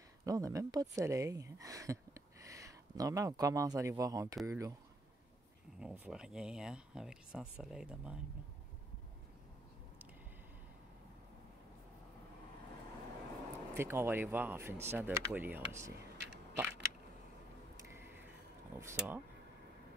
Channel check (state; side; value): normal; both; correlation 0.70